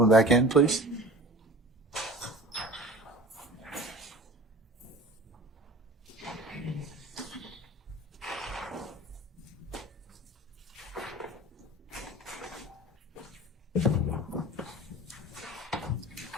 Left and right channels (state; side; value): normal; both; correlation 0.40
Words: back in, please.